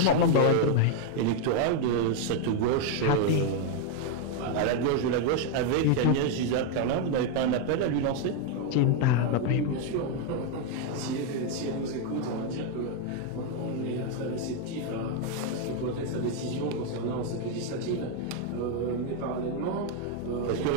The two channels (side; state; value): both; different; correlation 0.01